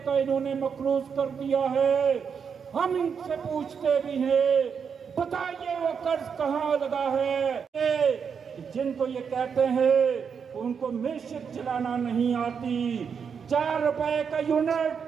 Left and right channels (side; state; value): left; quieter; 6.6 dB